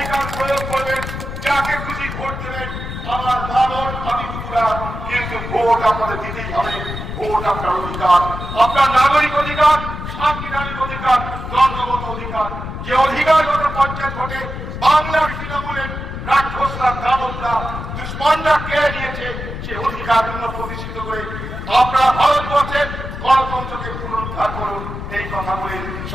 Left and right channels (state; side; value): noise; left; rumble, 7 dB below the sound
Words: প্রয়োগ করবেন, যাকে খুশি ভোট দেবেন। আমার মানন ভাবিগুলা, কিন্তু ভোট আপনাদের দিতেই হবে। ভোট আপনার অধিকার, আপনার নাগরিক অধিকার, সাংবিধানিক অধিকার, জন্মগত অধিকার। যে অধিকার গত পঞ্চায়েত ভোটে বাংলার তৃণমূলের রাক্ষসরা, দানবরা, দুশ্মনরা কেড়ে নিয়েছে, সে অধিকার পুনঃপ্রতিষ্ঠিত করে আপনারা ভারতবর্ষের গণতন্ত্রকে পুনরুদ্ধার করুন। এই কথা বলে